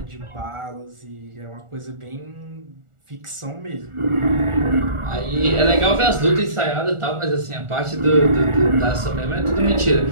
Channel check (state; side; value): late; left; 1.4 ms